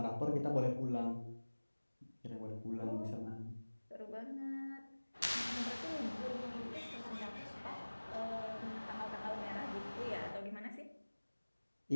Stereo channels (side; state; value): both; inverted; correlation -1.00